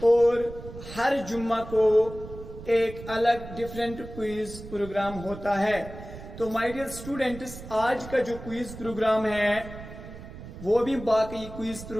और हर जुम्मा को एक अलग डिफरेंट क्विज प्रोग्राम होता है। तो माय डियर स्टूडेंट्स, आज का जो क्विज प्रोग्राम है वो भी बाकी क्विज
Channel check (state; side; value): noise; right; rumble, 13 dB below the sound